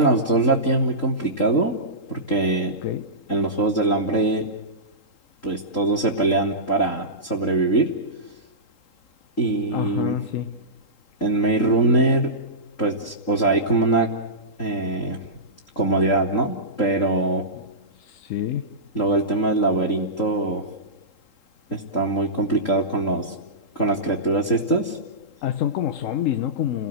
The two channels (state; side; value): late; right; 3.8 ms